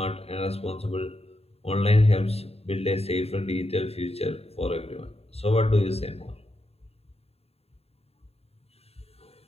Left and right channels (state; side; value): late; right; 0.29 ms